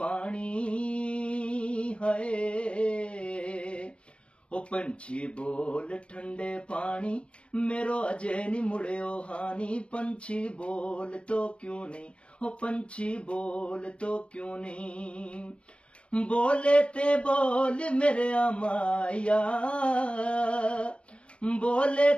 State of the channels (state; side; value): late; right; 0.059 ms